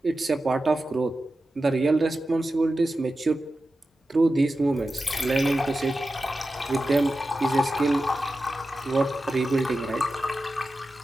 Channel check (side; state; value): both; normal; correlation 0.92